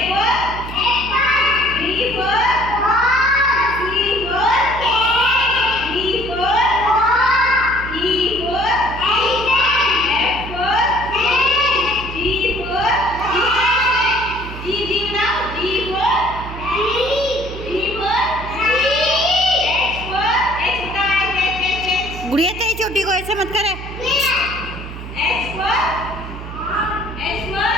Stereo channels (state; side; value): noise; right; hum, 10 dB below the sound